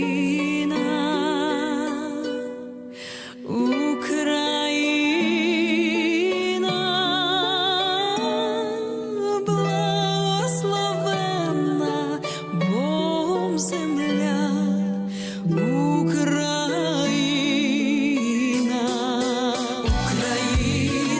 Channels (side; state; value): both; identical; correlation 1.00